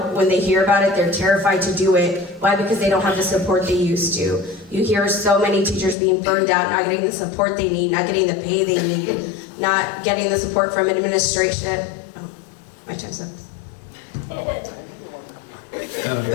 when they hear about it, they're terrified to do it. Why? Because they don't have the support they used to. You hear so many teachers being burned out, not getting the support they need, not getting the pay they need, not getting the support from administration. Oh, my time's up.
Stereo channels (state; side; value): drops out; right; at 6.0 s